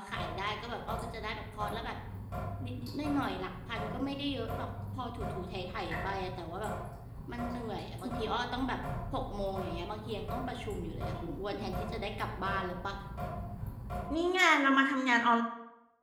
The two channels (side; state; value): both; identical; correlation 1.00